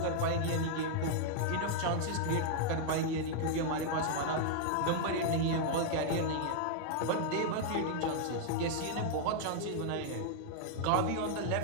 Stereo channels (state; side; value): different; both; correlation -0.01